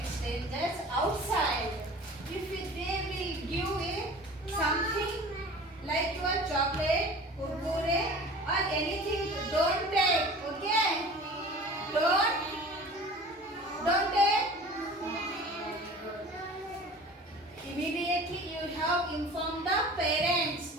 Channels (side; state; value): both; normal; correlation 0.42